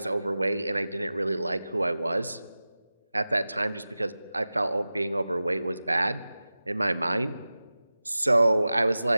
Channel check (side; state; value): both; inverted; correlation -0.96